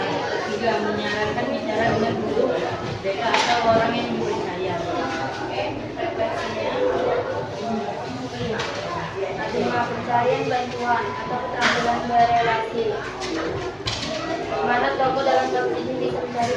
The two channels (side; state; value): both; identical; correlation 1.00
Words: 3. Menyarankan bicara dengan guru, BK atau orang yang dipercaya. Oke, refleksinya. Terima pencarian bantuan atau keterampilan berelasi. Mana tokoh dalam kasus ini bisa mencari